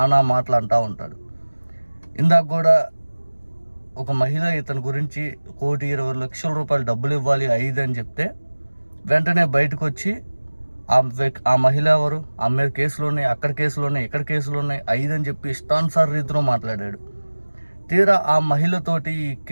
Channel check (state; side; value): inverted; both; correlation -1.00